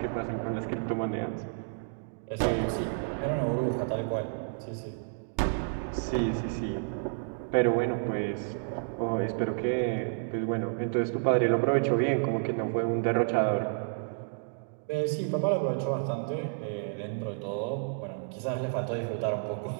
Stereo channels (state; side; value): silent; left; digital silence